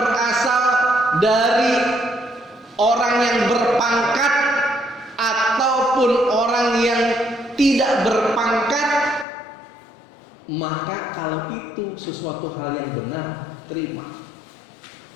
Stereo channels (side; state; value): right; drops out; at 9.2 s